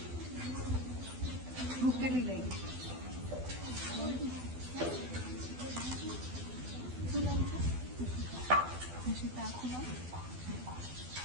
ભૂખ કેટલી લઈ શું નામ છે સીતા આખું નામ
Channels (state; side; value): late; left; 12 ms